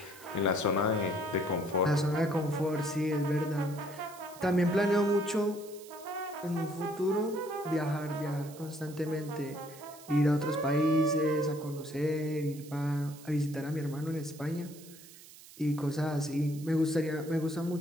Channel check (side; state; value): right; noise; hiss, 19 dB below the sound